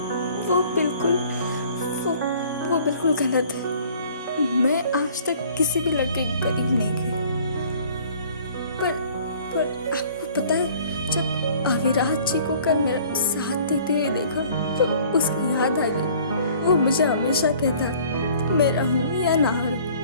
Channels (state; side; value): inverted; both; correlation -0.53